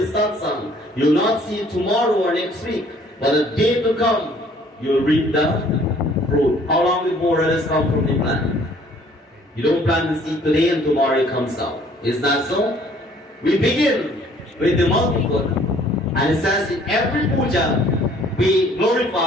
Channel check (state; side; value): normal; both; correlation 0.58